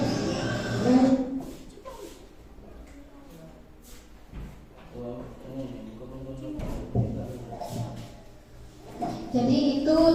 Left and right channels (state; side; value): identical; both; correlation 1.00